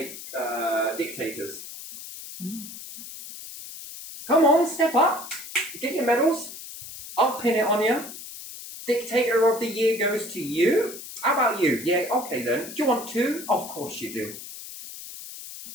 dictators? Come on, step up. Get your medals. I'll pin it on you. Dictator of the year goes to you. How about you? Yeah, okay then. Do you want two? Of course you do.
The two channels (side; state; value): left; noise; hiss, 12 dB below the sound